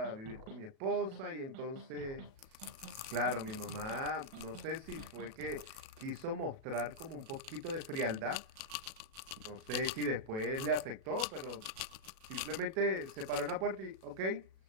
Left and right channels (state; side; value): late; left; 36 ms